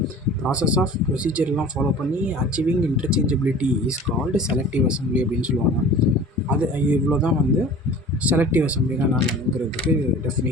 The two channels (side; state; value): both; normal; correlation 0.42